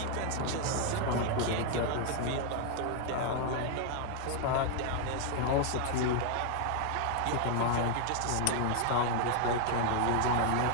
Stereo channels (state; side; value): different; both; correlation 0.00